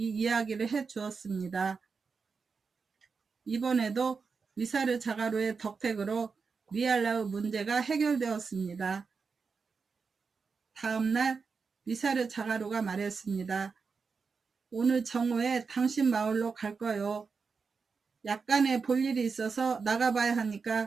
이야기를 해 주었습니다. 이번에도 미사르 자가루의 덕택으로 리알라의 문제가 해결되었습니다. 다음날 미사르 자가루가 말했습니다. 오늘 정오에 당신 마을로 갈 거요. 약간의 볼 일이 있어서 나가봐야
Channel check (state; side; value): quieter; left; 5.1 dB